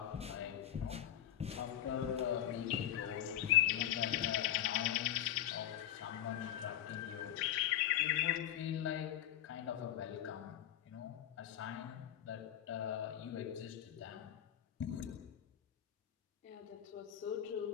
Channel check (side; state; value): right; quieter; 11.8 dB